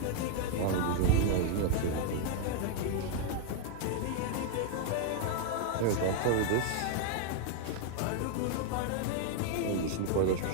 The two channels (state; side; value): different; both; correlation 0.00